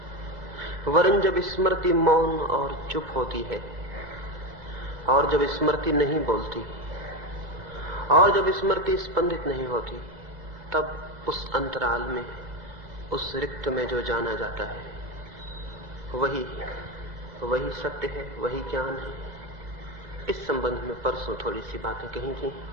वरन जब स्मृति मौन और चुप होती है, और जब स्मृति नहीं बोलती, और जब स्मृति स्पंदित नहीं होती, तब उस अंतराल में, उस रिक्त में जो जाना जाता है, वही सत्य है, वही ज्ञान है। इस संबंध में परसों थोड़ी सी बातें कही थी,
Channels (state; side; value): late; left; 2.0 ms